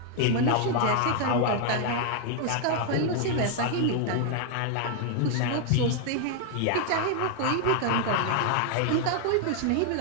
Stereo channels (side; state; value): both; different; correlation 0.00